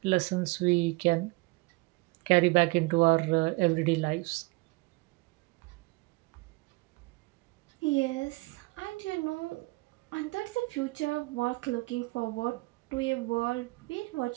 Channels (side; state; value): left; quieter; 24.6 dB